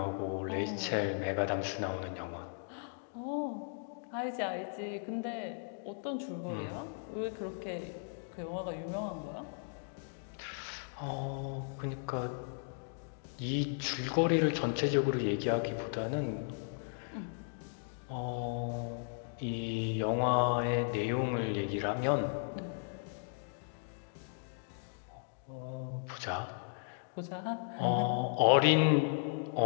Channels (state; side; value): silent; right; digital silence